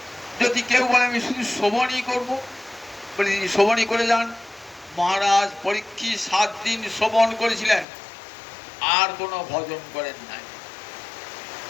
যদি কেউ বলে আমি শুধু শ্রবণই করবো, বলে তিনি শ্রবণই করে যান। মহারাজ পরীক্ষিত 7 দিন শ্রবণ করেছিলেন, আর কোনো ভজন করেন নাই।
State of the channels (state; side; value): drops out; right; at 7.9 s